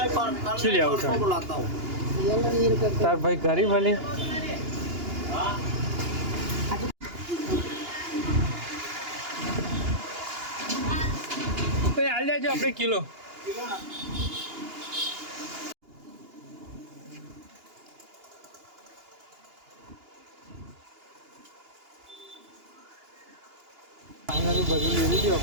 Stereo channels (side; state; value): left; late; 2.9 ms